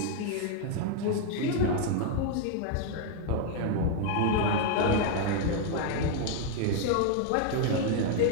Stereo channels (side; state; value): both; different; correlation 0.00